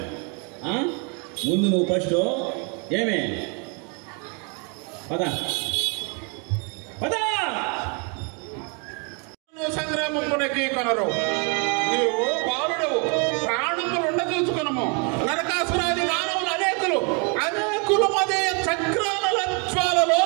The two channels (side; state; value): left; quieter; 35.3 dB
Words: ముందు నువ్వు ఫస్ట్ ఏమే పదా పదా సంగ్రామమునకి కొనరు. నీవు బాలుడవు, ప్రాణములుండ చూసుకునము. నరకాసురాది మానవులు అనేకులు అదే చక్రాల జ్వాలలో